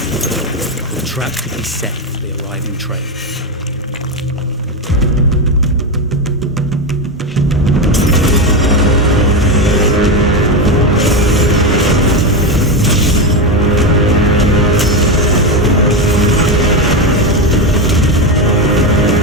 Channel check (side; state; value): both; normal; correlation 0.12